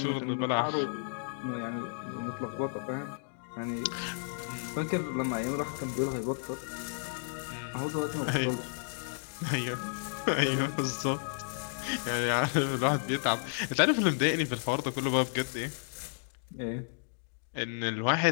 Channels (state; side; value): silent; right; digital silence